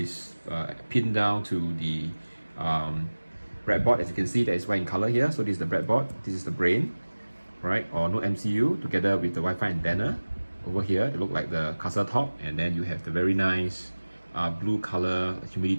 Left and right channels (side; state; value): both; inverted; correlation -1.00